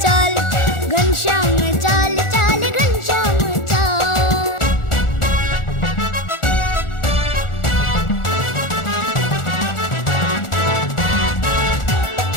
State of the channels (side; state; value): right; late; 1.4 ms